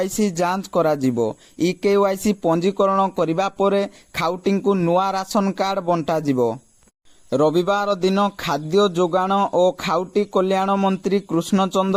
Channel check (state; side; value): identical; both; correlation 1.00